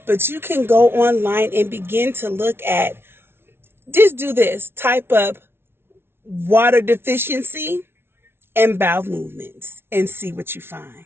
but you can go online and begin to look at, just do this, type up water deficiency and bowel movements and see what you find.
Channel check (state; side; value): late; left; 0.12 ms